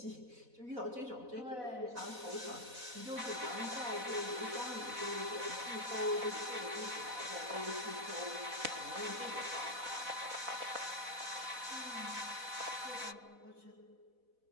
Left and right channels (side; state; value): left; late; 4.1 ms